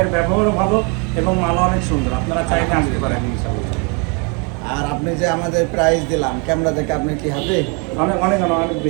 ব্যবহারও ভালো এবং মালও অনেক সুন্দর। আপনারা চাইলে আসতে পারেন ইনশাআল্লাহ। আর আপনি যে আমাদের প্রাইস দিলাম ক্যামেরা দেখে, আপনি কি হ্যাপি? অনেক অনেক অনেক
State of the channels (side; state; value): left; quieter; 31.7 dB